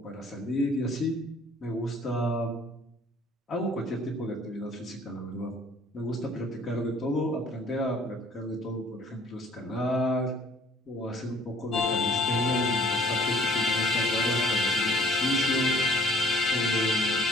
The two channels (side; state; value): both; normal; correlation 0.56